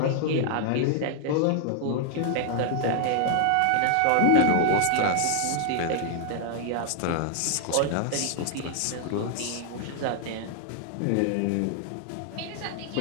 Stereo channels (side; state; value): both; different; correlation 0.00